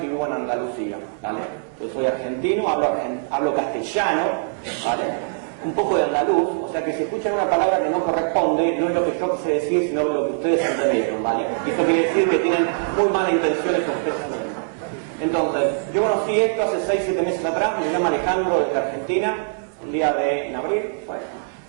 vivo en Andalucía, ¿vale? Yo soy argentino, hablo castellano, ¿vale? Un poco de andaluz, o sea que si escuchan una palabra que no corresponde, no es lo que yo quise decir, sino lo que ustedes entendieron, ¿vale? Y eso quiere decir que tienen muy malas intenciones con ustedes también. Entonces, yo conocí esto hace 6, 7 meses atrás, me llama Alejandro desde Argentina, un día en abril, bueno,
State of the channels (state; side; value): silent; left; digital silence